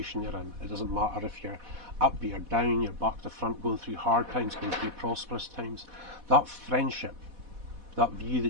you're in. It doesn't matter if you're up, you're down, you're back to front, going through hard times, going through prosperous times. That friendship, that view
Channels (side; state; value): left; late; 4.1 ms